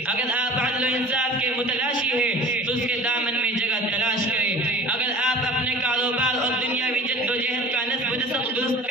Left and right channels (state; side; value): normal; both; correlation 0.43